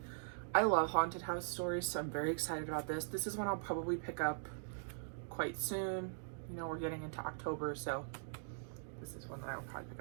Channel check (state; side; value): silent; left; digital silence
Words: I love haunted house stories, so I'm very excited about this. This is one I'll probably pick up quite soon. We're getting into October, so this is one that I'll probably pick